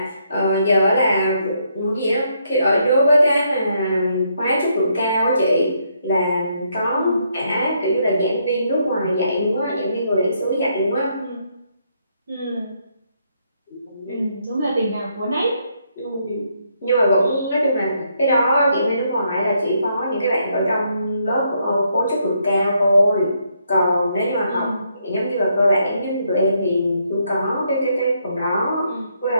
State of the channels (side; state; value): both; inverted; correlation -0.74